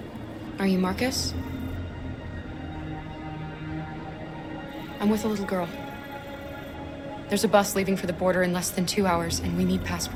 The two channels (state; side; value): identical; both; correlation 1.00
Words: Are you Marcus? I'm with a little girl. There's a bus leaving for the border in less than 2 hours, and we need